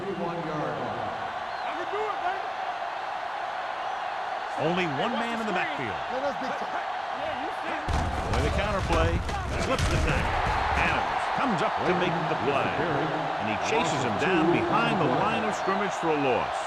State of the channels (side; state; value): both; identical; correlation 1.00